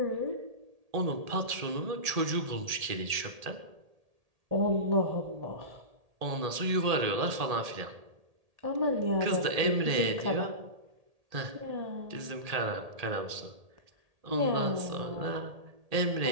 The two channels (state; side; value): late; left; 1.8 ms